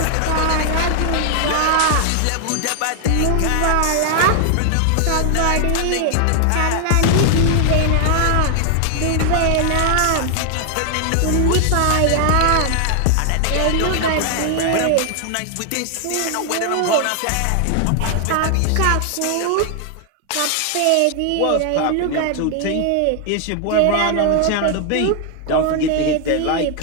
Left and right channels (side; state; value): both; different; correlation 0.00